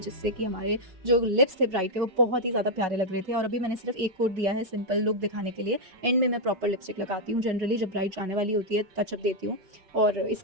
कि हमारे जो लिप्स थे ब्राइट थे वो बहुत ही ज़्यादा प्यारे लग रहे थे। और अभी मैंने सिर्फ एक कोट दिया है सिंपल लुक दिखाने के लिए, एंड में मैं प्रॉपर लिपस्टिक लगाती हूँ जनरली जब ब्राइट जाने वाली होती है टचअप देती हूँ। और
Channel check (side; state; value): left; late; 5.3 ms